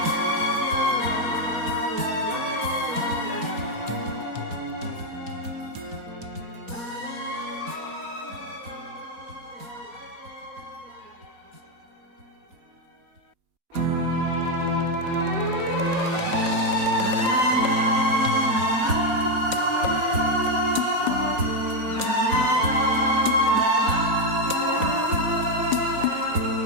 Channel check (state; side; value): late; left; 4.2 ms